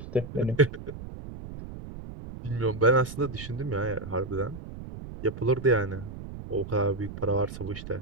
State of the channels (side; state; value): right; noise; rumble, 11 dB below the sound